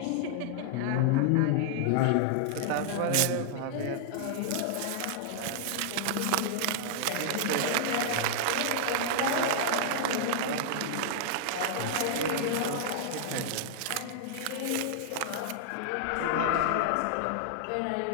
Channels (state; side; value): different; both; correlation -0.01